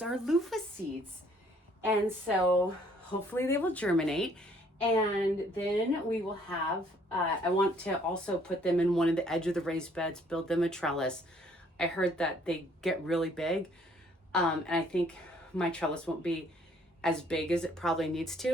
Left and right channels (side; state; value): both; normal; correlation 0.62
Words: are loofah seeds. And so hopefully they will germinate. And then we will have, I want to also put them in one of the edge of the raised beds, build them a trellis. I heard that they get really big. And I think my trellis won't be as big as it probably needs